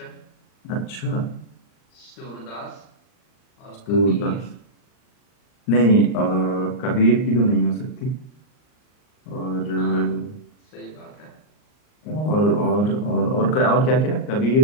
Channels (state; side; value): late; right; 39 ms